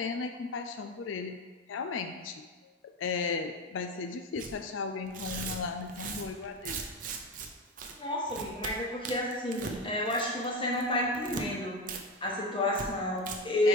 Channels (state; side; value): normal; both; correlation 0.20